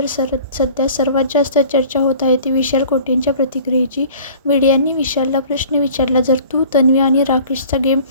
सध्या सर्वात जास्त चर्चा होत आहे ती विशाल कोटेंच्या प्रतिक्रियेची. मीडियाने विशालला प्रश्न विचारला, जर तू तन्वी आणि राकेशचा गेम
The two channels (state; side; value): inverted; both; correlation -0.47